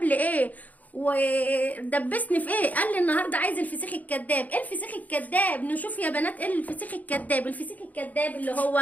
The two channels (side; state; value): right; late; 0.078 ms